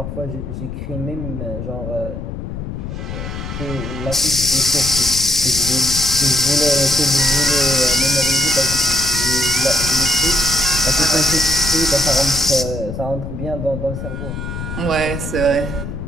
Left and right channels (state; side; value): noise; left; rumble, 7 dB below the sound